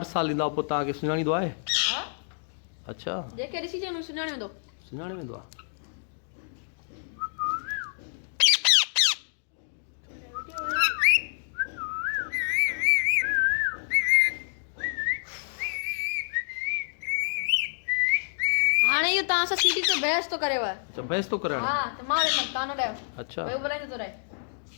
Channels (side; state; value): right; silent; digital silence